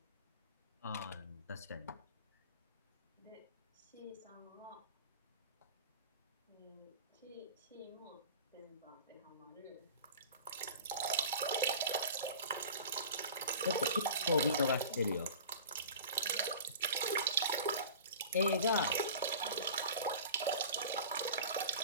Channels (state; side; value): inverted; both; correlation -0.38